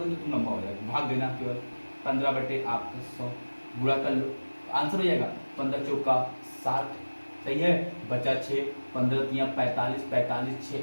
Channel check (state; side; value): inverted; both; correlation -1.00